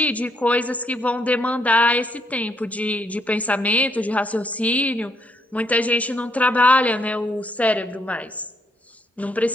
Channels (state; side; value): normal; both; correlation 0.73